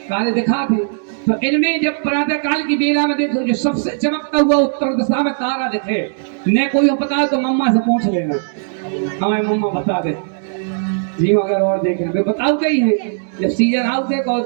दिखा थे, तो इनमें जब प्रातः काल की बेला में देखो जो सबसे चमकता हुआ उत्तर दिशा में तारा दिखे, न कोई पता तो मम्मा से पूछ लेना, हमें मम्मा बता दे जी। अगर और देख रहे बताओ कहीं है, जब सीजन आउट है और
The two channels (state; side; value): silent; left; digital silence